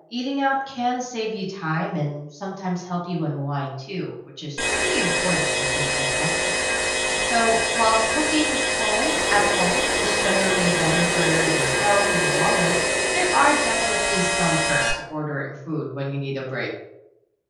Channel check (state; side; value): identical; both; correlation 1.00